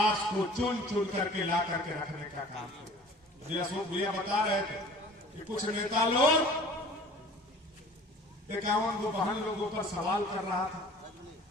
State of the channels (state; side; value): normal; both; correlation 0.46